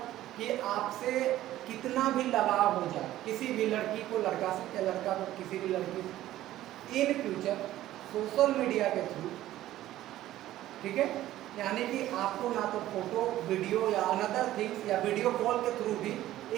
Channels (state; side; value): quieter; left; 14.2 dB